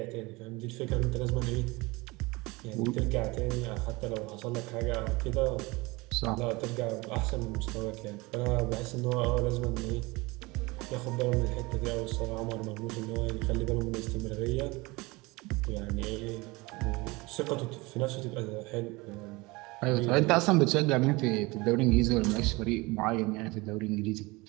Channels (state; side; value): quieter; left; 23.7 dB